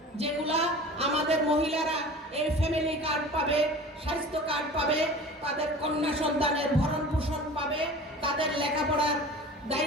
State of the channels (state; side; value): normal; both; correlation 0.39